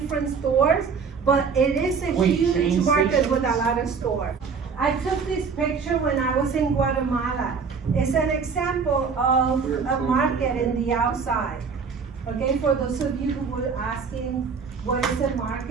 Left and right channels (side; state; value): left; quieter; 5.6 dB